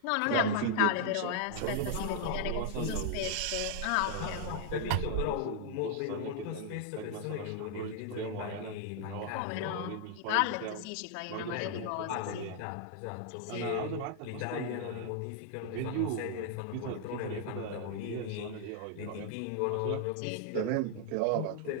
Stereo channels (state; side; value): different; both; correlation 0.00